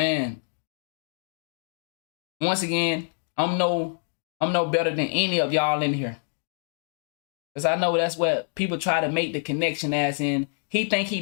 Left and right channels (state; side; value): silent; right; 61 dB below the other